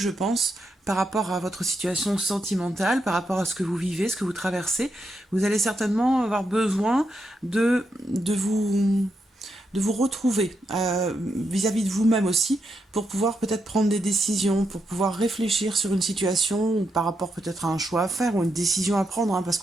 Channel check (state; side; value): normal; both; correlation 0.82